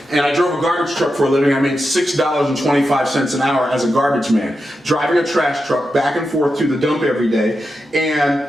And I drove a garbage truck for a living. I made $6.25 an hour as a garbage man, driving a trash truck back and forth to the dump every day.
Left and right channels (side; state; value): both; normal; correlation 0.89